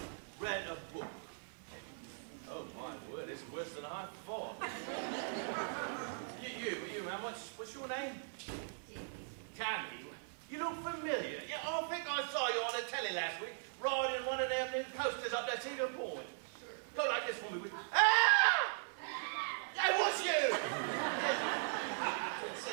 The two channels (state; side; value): silent; left; digital silence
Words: read a book? Oh my word, it's worse than I thought. you man, what's your name? Tammy. You look familiar. Yeah, I think I saw you on the telly last week riding one of them new coasters up that Cedar Point. Go like this for me, would you? Ah! That was you!